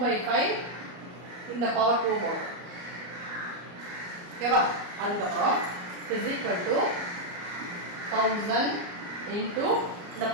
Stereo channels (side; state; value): left; late; 34 ms